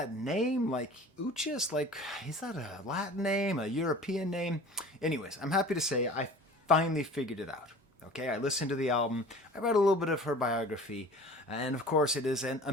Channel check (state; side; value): normal; both; correlation 0.43